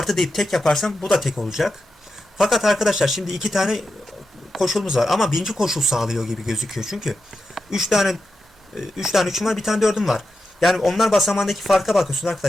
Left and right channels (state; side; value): normal; both; correlation 0.89